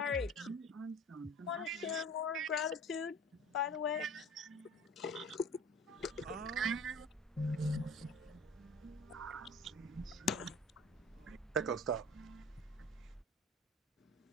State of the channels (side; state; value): both; normal; correlation 0.42